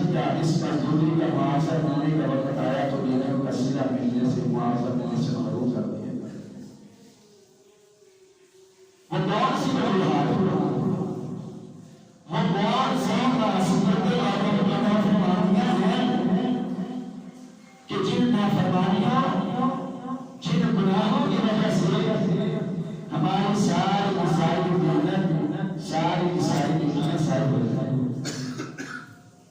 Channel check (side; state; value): both; identical; correlation 1.00